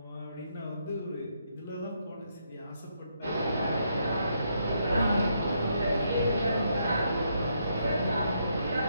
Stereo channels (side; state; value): both; inverted; correlation -0.76